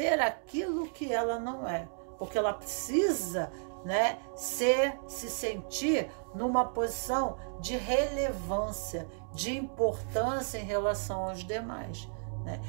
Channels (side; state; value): left; silent; digital silence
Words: aquilo que ela não é, porque ela precisa, né, se sentir numa posição de relevância, de importância em relação aos demais.